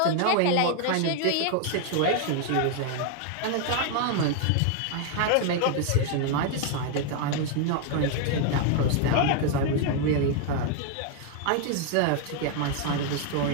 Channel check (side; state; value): both; different; correlation 0.00